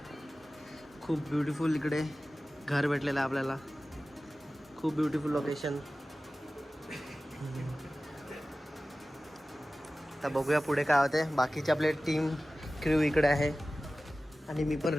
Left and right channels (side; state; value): both; normal; correlation 0.96